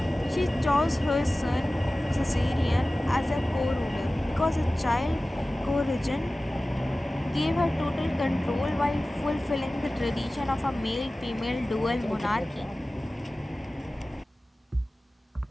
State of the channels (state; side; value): normal; both; correlation 0.97